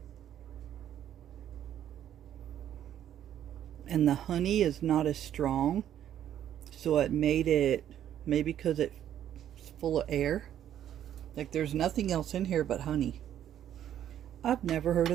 And the honey is not as strong. So it made it, maybe because it's full of air. Like there's nothing else in here but honey. I've never heard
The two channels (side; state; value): left; quieter; 10.7 dB